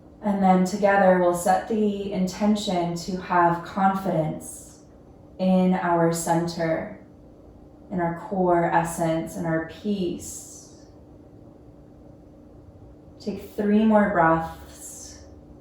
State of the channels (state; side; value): identical; both; correlation 1.00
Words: And then together we'll set the intention to have confidence in our center, in our core essence, in our peace. Take 3 more breaths,